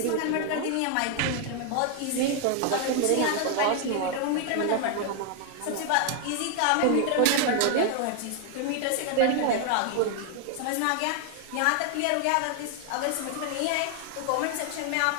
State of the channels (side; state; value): both; different; correlation 0.00